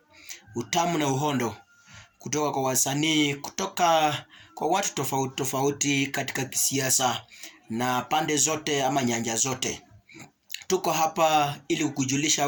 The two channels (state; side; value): identical; both; correlation 1.00